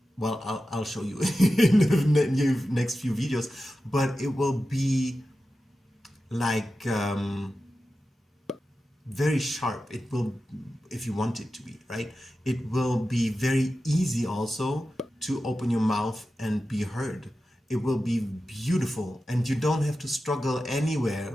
well, I'll show you in the next few videos, but it will be like very sharp. It will, if you want it to be, right? It will be very easy also to open your mouth and be heard. It will be beautiful, and you don't have to struggle anywhere,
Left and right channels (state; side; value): normal; both; correlation 0.93